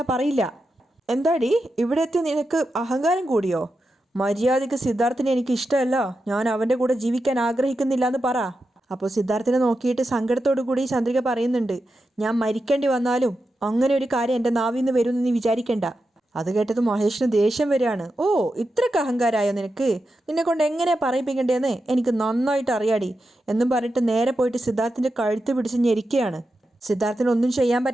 പറയില്ല. എന്താടി ഇവിടെ എത്തി നിനക്ക് അഹങ്കാരം കൂടിയോ? മര്യാദയ്ക്ക് സിദ്ധാർത്ഥിനെ എനിക്ക് ഇഷ്ടമല്ല, ഞാൻ അവൻ്റെ കൂടെ ജീവിക്കാൻ ആഗ്രഹിക്കുന്നില്ല എന്ന് പറ. അപ്പോൾ സിദ്ധാർത്ഥിനെ നോക്കിയിട്ട് സങ്കടത്തോടു കൂടി ചന്ദ്രിക പറയുന്നുണ്ട്, ഞാൻ മരിക്കേണ്ടി വന്നാലും അങ്ങനെ ഒരു കാര്യം എൻ്റെ നാവിൽ നിന്ന് വരുമെന്ന് നീ വിചാരിക്കണ്ട. അത് കേട്ടത് മഹേഷിന് ദേഷ്യം വരികയാണ്. ഓ ഇത്രയ്ക്ക് അഹങ്കാരമായോ നിനക്ക്? നിന്നെ കൊണ്ട് എങ്ങനെയാണ് പറയിപ്പിക്കേണ്ടതെന്ന് എനിക്ക് നന്നായിട്ട് അറിയാടി എന്നും പറഞ്ഞിട്ട് നേരെ പോയിട്ട് സിദ്ധാർത്ഥിൻ്റെ കഴുത്ത് പിടിച്ച് ഞെരിക്കുകയാണ്. സിദ്ധാർത്ഥിന് ഒന്നും ചെയ്യാൻ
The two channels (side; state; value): both; normal; correlation 0.89